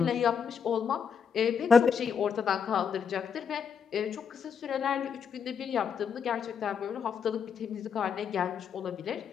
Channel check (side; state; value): right; quieter; 6.8 dB